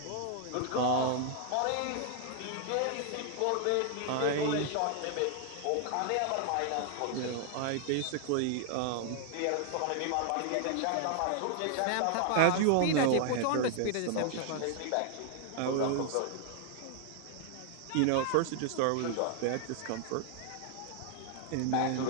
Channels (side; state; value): both; different; correlation 0.00